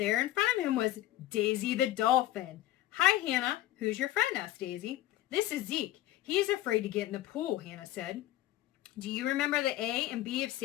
in front of him was Daisy the dolphin. Hi, Hannah. Who's your friend? Asked Daisy. This is Zeke. He's afraid to get in the pool, Hannah said. Do you remember the A and B of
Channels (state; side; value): quieter; right; 14.6 dB